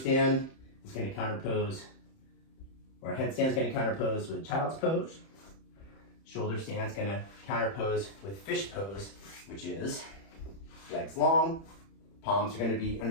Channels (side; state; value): right; late; 31 ms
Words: is going to counterpose, or headstand is going to counterpose with child's pose. Shoulder stand is going to counterpose with fish pose, which is legs long, palms are going to be